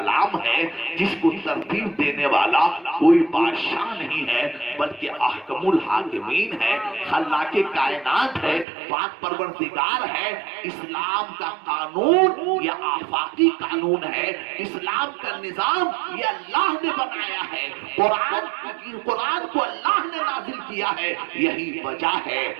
ہے جس کو ترتیب دینے والا کوئی بادشاہ نہیں ہے بلکہ احکم الحاکمین ہے، خلاق کائنات ہے، پاک پروردگار ہے. اسلام کا قانون یا آفاقی قانون ہے، اسلام کا نظام یہ اللہ نے بنایا ہے، قرآن کو اللہ نے نازل کیا ہے. یہی وجہ ہے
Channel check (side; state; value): left; drops out; at 8.7 s